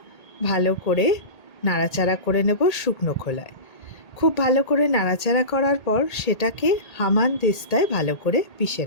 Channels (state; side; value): late; right; 1.8 ms